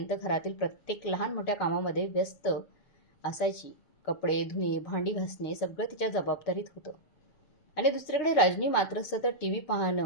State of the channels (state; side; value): late; right; 6.9 ms